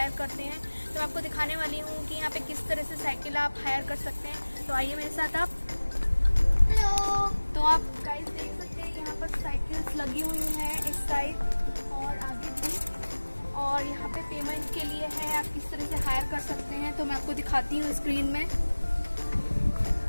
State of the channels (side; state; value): both; inverted; correlation -1.00